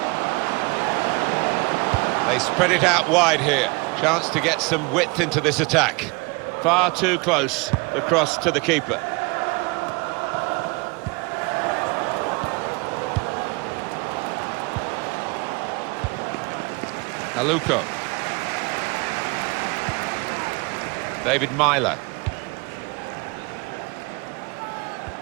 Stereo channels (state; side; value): quieter; left; 27.8 dB